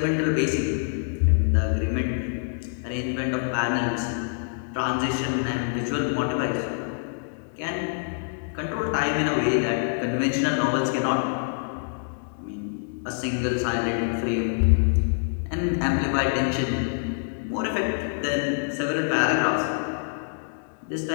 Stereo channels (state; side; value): silent; right; digital silence